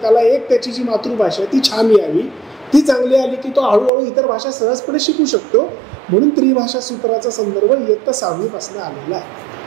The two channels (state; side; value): drops out; left; at 3.9 s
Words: त्याला एक त्याची जी मातृभाषा आहे ती छान यावी ती चांगली आली की तो हळूहळू इतर भाषा सहजपणे शिकू शकतो. म्हणून त्रिभाषा सूत्राचा संदर्भ इयत्ता 6वी पासून आलेला आहे.